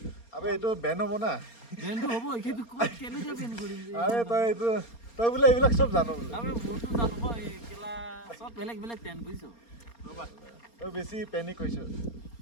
আবে এইটো বেন হ'ব না বেনটো হ'ব সেইটো ক'ত কেনেকৈ বেন কৰিম আৰে তই বোলে এইবিলাক চব জানো বোলে আৰে মোৰতো জানো মই এই কেলা চব বেলেগ বেলেগ টেন বুজিছ ৰ'বা তই বেছি পেনিক হৈছ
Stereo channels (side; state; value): right; late; 4.3 ms